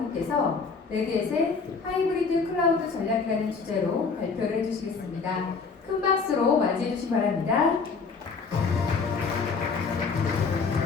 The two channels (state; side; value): quieter; right; 4.9 dB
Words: 레드햇의 하이브리드 클라우드 전략이라는 주제로 발표를 해주시겠습니다. 큰 박수로 맞이해 주시기 바랍니다.